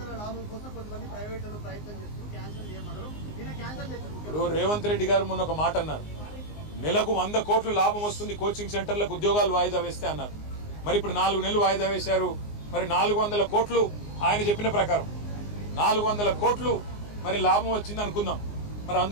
ఇప్పుడు రేవంత్ రెడ్డి గారు మొన్న ఒక మాట అన్నారు, నెలకు 100 కోట్లు లాభం వస్తుంది కోచింగ్ సెంటర్లకు ఉద్యోగాలు వాయిదా వేస్తే అన్నారు. మరి ఇప్పుడు 4 నెలలు వాయిదా వేశారు. మరి 400 కోట్లు ఆయన చెప్పిన ప్రకారం 400 కోట్లు మరి లాభం వచ్చింది అనుకుందాం. మరి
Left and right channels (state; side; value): late; right; 19 ms